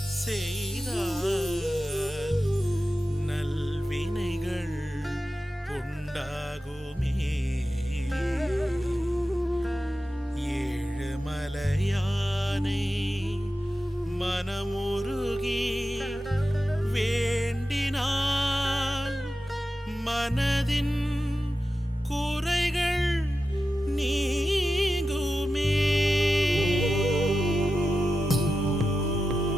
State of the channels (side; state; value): both; normal; correlation 0.92